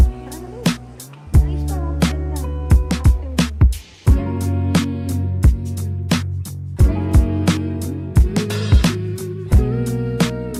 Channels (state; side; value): identical; both; correlation 1.00